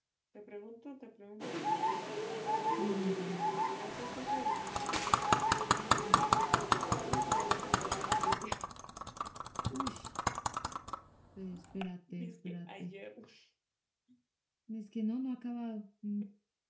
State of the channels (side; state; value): both; identical; correlation 1.00